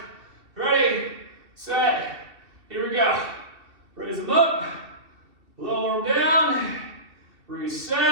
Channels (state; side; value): late; left; 2.7 ms